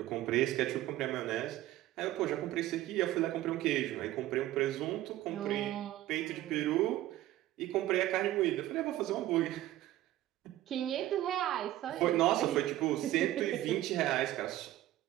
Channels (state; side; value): quieter; left; 14.8 dB